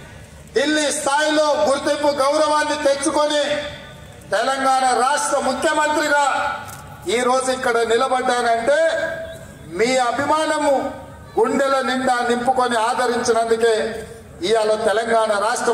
ఢిల్లీ స్థాయిలో గుర్తింపు గౌరవాన్ని తెచ్చుకొని తెలంగాణ రాష్ట్ర ముఖ్యమంత్రిగా ఈరోజు ఇక్కడ నిలబడ్డానంటే మీ అభిమానము గుండెల నిండా నింపుకొని ఆదరించినందుకే ఇవాళ తెలంగాణ రాష్ట్ర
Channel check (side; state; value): both; identical; correlation 1.00